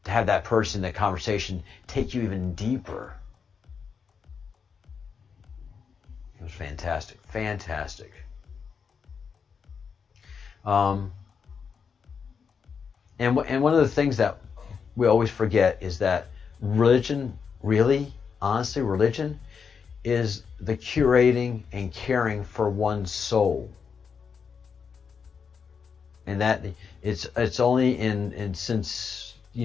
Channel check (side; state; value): right; quieter; 6.2 dB